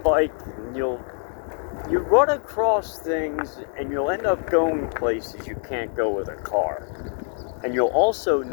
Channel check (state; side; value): silent; right; 55 dB below the other